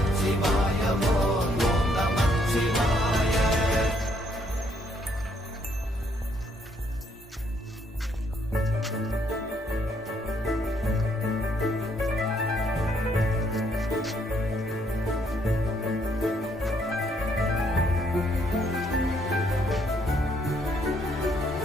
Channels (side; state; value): both; normal; correlation 0.70